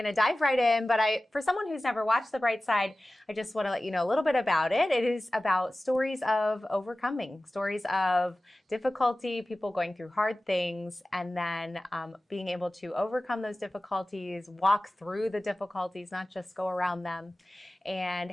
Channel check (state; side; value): normal; both; correlation 0.96